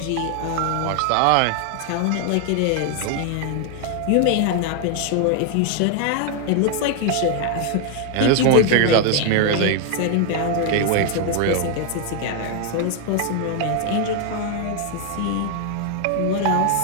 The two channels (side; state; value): both; different; correlation 0.00